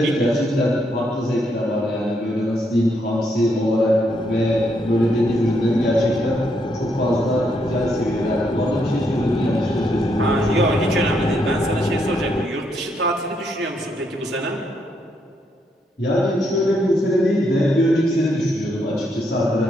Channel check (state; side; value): normal; both; correlation 0.76